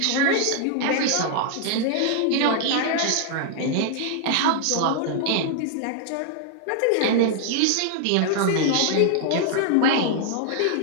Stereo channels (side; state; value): both; different; correlation 0.00